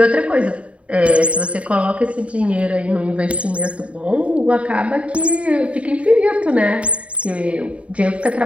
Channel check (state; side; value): late; left; 0.063 ms